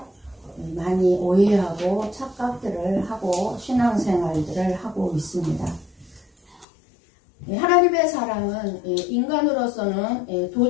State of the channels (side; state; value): right; drops out; at 6.7 s